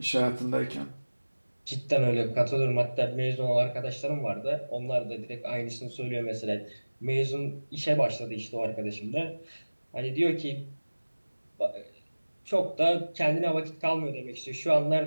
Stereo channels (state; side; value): inverted; both; correlation -1.00